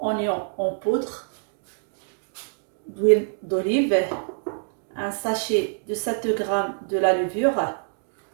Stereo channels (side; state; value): left; silent; digital silence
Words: en poudre, d'huile d'olive, un sachet de 7 g de la levure,